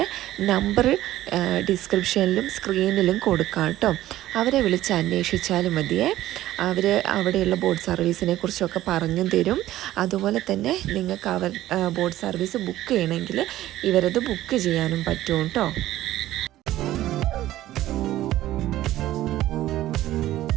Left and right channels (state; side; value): quieter; left; 14.5 dB